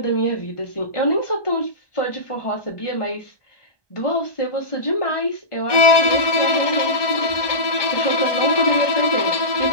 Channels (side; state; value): right; late; 1.2 ms